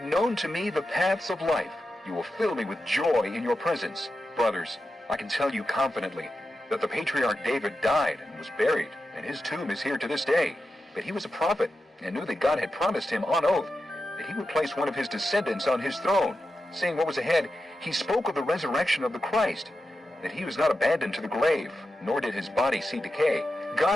known to me the paths of life. You will fill me with joy in your presence. Brothers, I can tell you confidently that the patriarch David died and was buried, and his tomb is here to this day. But he was a prophet, and knew that God had promised him on oath that he would place one of his descendants on his throne. Seeing what was ahead, he spoke of the resurrection of the Christ, that he was not abandoned to the grave, nor did his body see decay.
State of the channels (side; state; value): both; normal; correlation 0.90